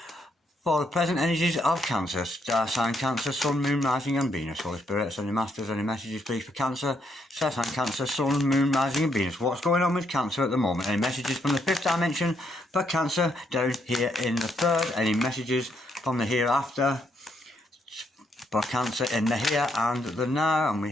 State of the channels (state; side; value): normal; both; correlation 0.75